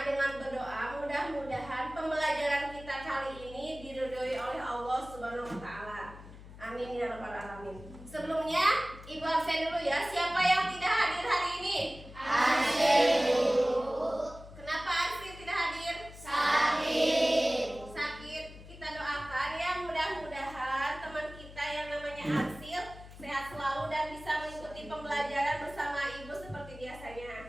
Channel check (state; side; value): noise; left; hum, 16 dB below the sound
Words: dengan berdoa mudah-mudahan pembelajaran kita kali ini diridhoi oleh Allah Subhanahu wa taala. Amin ya rabbal alamin. Sebelumnya Ibu absen dulu ya. Siapa yang tidak hadir hari ini? Absen. Kenapa absen tidak hadir? Sakit. Kita doakan ya, mudah-mudahan teman kita yang namanya Arsil sehat selalu dan bisa mengikuti pembelajaran bersama Ibu seperti